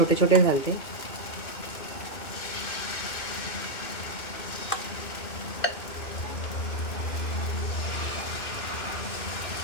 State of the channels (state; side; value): late; right; 2.5 ms